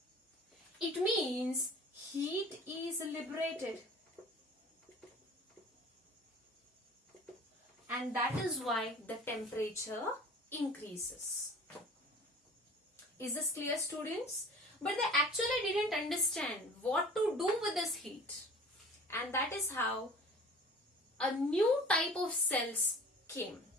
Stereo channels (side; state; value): both; normal; correlation 0.43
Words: It means heat is liberated. And that is why the temperature increases. Is this clear, students? But they actually didn't understand what to do with this heat. And that is how a new type of cells came.